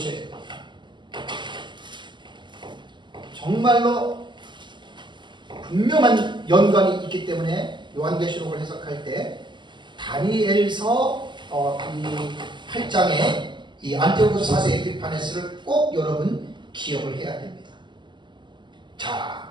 돼요. 정말로 분명한 연관이 있기 때문에 요한계시록을 해석할 때 다니엘서 이 8장의 이 안티오코스 4세 에피파네스를 꼭 여러분 기억을 해야 됩니다.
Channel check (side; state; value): left; late; 0.22 ms